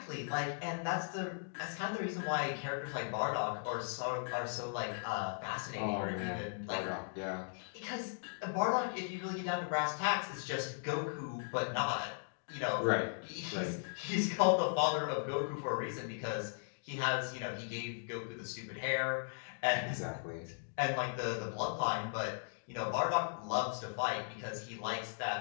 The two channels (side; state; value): right; silent; digital silence